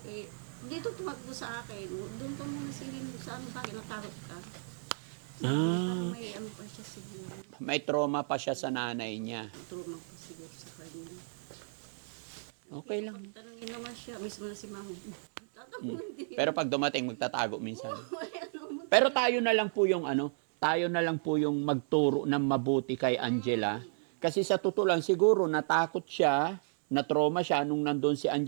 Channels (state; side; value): silent; left; digital silence